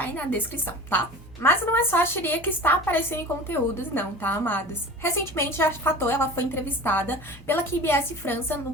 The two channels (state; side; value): normal; both; correlation 0.38